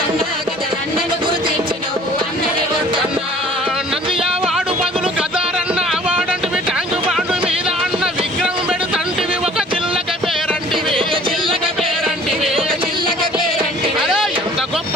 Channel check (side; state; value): both; normal; correlation 0.51